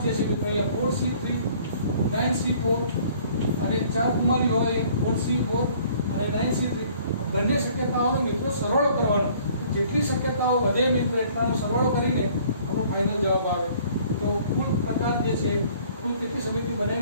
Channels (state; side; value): inverted; both; correlation -0.56